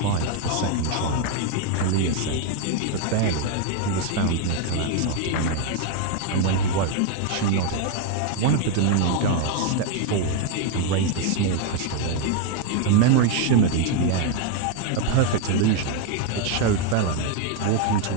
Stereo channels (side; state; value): both; different; correlation 0.01